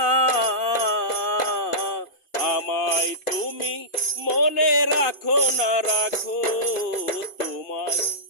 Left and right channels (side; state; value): right; late; 2.5 ms